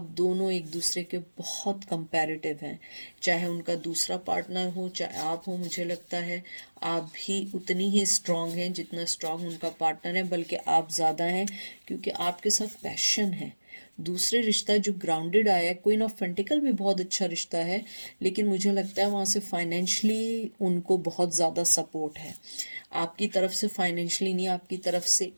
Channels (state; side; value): inverted; both; correlation -1.00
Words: दोनों एक दूसरे के बहुत कंपैरेटिव हैं। चाहे उनका दूसरा पार्टनर हो चाहे आप हो, मुझे लगता है आप भी उतनी ही स्ट्रांग हैं जितना स्ट्रांग उनका पार्टनर है, बल्कि आप ज़्यादा हैं, क्योंकि आपके साथ पैशन है। दूसरे रिश्ता जो ग्राउंडेड आया है, क्वीन ऑफ पेंटिकल भी बहुत अच्छा रिश्ता है, लेकिन मुझे लगता है वहाँ से फाइनेंशली उनको बहुत ज़्यादा सपोर्ट है। आपकी तरफ से फाइनेंशली नहीं, आपकी तरफ से